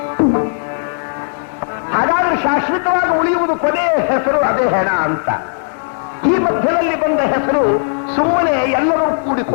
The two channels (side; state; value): right; silent; digital silence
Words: ಹಾಗಾದ್ರೆ ಶಾಶ್ವತವಾಗಿ ಉಳಿಯುವುದು ಕೊನೆಯ ಹೆಸರು, ಅದೇ ಹೆಣ ಅಂತ. ಈ ಮಧ್ಯದಲ್ಲಿ ಬಂದ ಹೆಸರು ಸುಮ್ಮನೆ ಎಲ್ಲರೂ